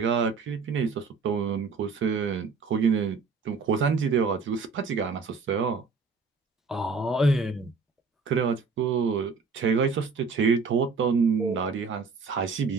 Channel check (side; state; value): left; quieter; 4.7 dB